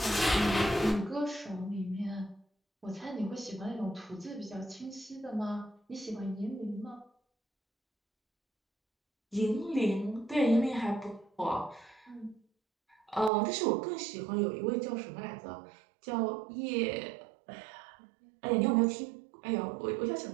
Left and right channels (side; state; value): left; drops out; at 13.3 s